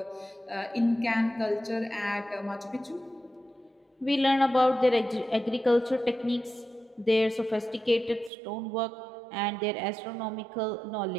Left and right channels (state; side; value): drops out; left; at 8.3 s